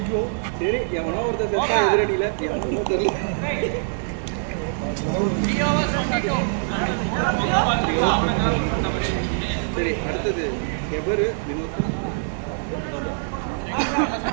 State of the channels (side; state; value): left; silent; digital silence